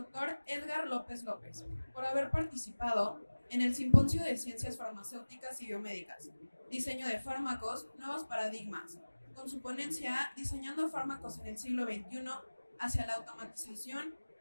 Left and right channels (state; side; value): inverted; both; correlation -1.00